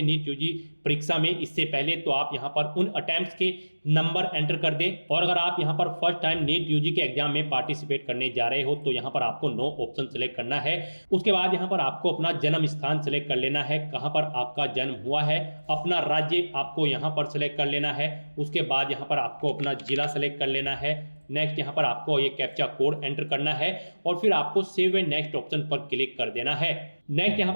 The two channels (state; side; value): inverted; both; correlation -1.00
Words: नीट यूजी परीक्षा में इससे पहले तो आप यहाँ पर उन अटेम्प्ट्स के नंबर एंटर कर दें। और अगर आप यहाँ पर फर्स्ट टाइम नीट यूजी के एग्जाम में पार्टिसिपेट करने जा रहे हो तो यहाँ पर आपको नो ऑप्शन सेलेक्ट करना है। उसके बाद यहाँ पर आपको अपना जन्म स्थान सेलेक्ट कर लेना है, कहाँ पर आपका जन्म हुआ है, अपना राज्य आपको यहाँ पर सेलेक्ट कर लेना है। उसके बाद यहाँ पर आपको अपना जिला सेलेक्ट कर लेना है। नेक्स्ट यहाँ पर आपको ये कैप्चा कोड एंटर करना है और फिर आपको सेव एंड नेक्स्ट ऑप्शन पर क्लिक कर देना है। नेक्स्ट यहाँ